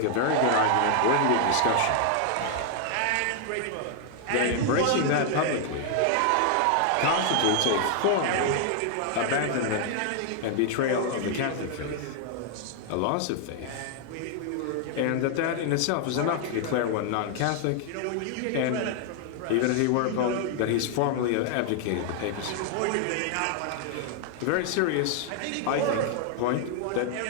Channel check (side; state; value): both; different; correlation 0.00